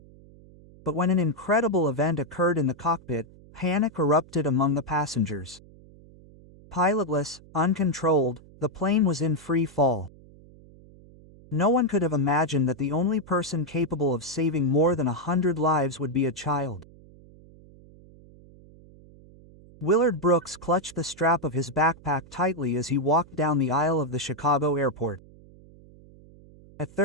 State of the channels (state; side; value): noise; right; hum, 23 dB below the sound